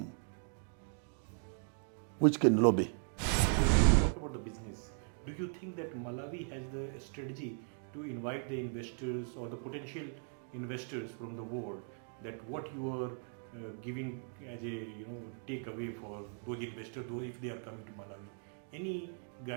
which can lobby. When you talk about the business, do you think that Malawi has the strategy to invite the investors or the potential investors from the world, that what you are giving as a takeaway for those investors, if they are coming to Malawi? Any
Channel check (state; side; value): silent; left; 52 dB below the other